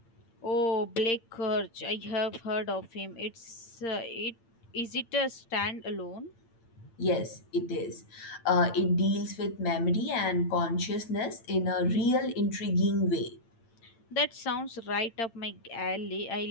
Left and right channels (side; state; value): right; late; 8.8 ms